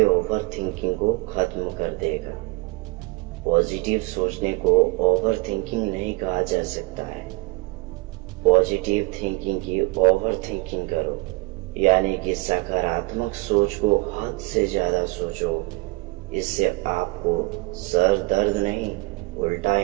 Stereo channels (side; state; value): left; quieter; 24.0 dB